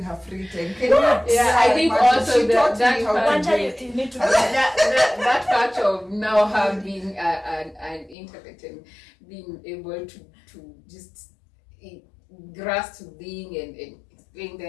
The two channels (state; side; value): drops out; right; at 8.2 s